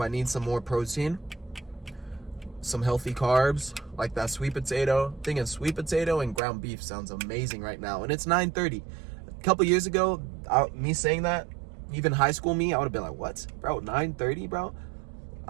I need some more protein, some healthy carbs, like that sweet potato. Thinking sweet potato and ground beef sounds amazing right now, and it's 9:30. A couple years ago, me saying that, even high school me, I would have been like, what, bro, 9:30, bro?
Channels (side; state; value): left; drops out; at 6.4 s